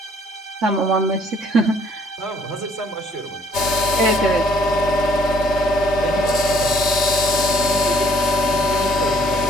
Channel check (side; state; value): both; normal; correlation 0.63